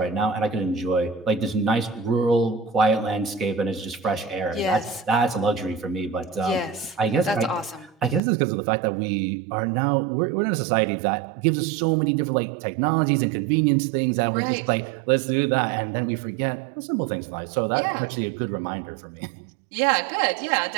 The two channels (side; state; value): left; drops out; at 8.2 s